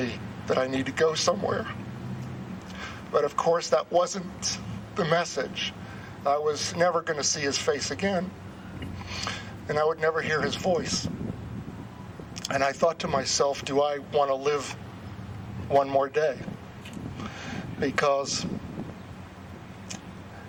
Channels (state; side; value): identical; both; correlation 1.00